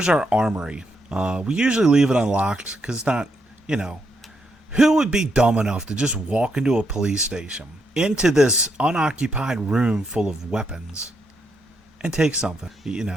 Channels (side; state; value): both; normal; correlation 0.79